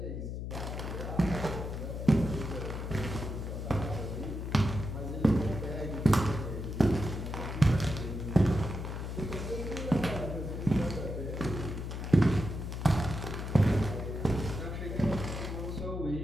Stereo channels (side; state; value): left; noise; hum, 5 dB below the sound